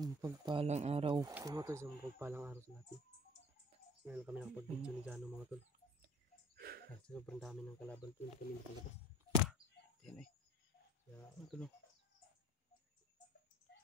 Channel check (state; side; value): normal; both; correlation 0.48